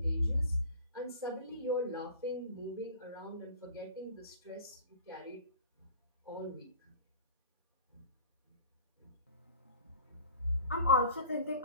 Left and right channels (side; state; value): both; inverted; correlation -0.42